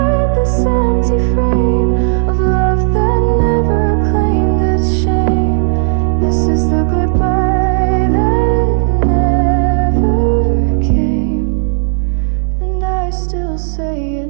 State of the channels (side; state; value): left; silent; 62 dB below the other